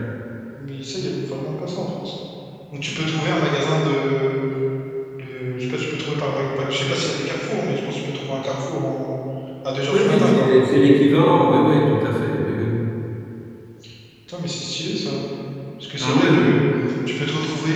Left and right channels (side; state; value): both; identical; correlation 1.00